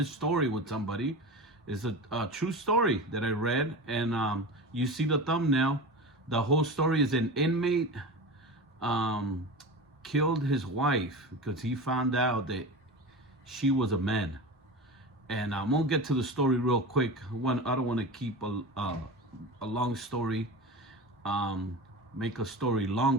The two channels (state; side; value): normal; both; correlation 0.28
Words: story with somebody. It's a true story that I read, and you see the thumbnail. The whole story is an inmate killed his wife because he found out that she was a man. And I'm gonna get to the story real quick. I don't want to keep a long story, make a story